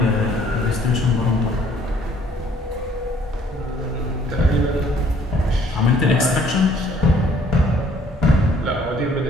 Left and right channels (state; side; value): normal; both; correlation 0.60